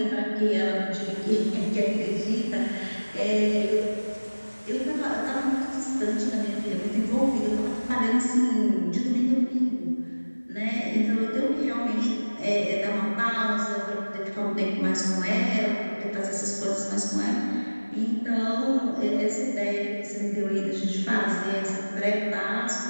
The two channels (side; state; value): both; inverted; correlation -1.00